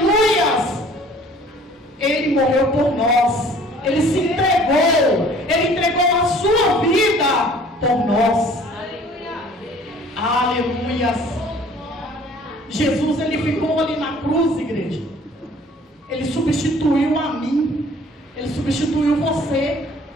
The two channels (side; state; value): both; normal; correlation 0.52